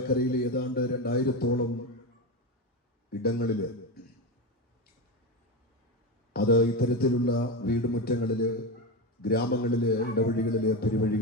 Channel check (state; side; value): normal; both; correlation 0.16